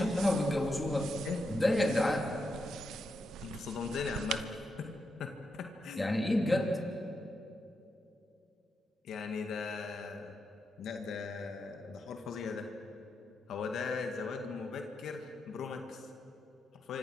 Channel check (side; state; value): both; normal; correlation 0.85